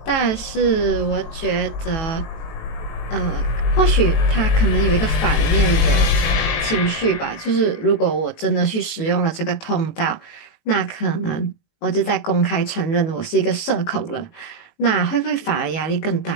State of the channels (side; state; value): right; late; 18 ms